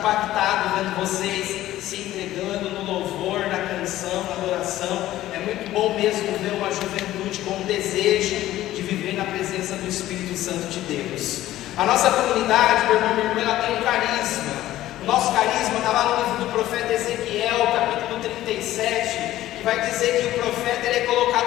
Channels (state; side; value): quieter; right; 14.5 dB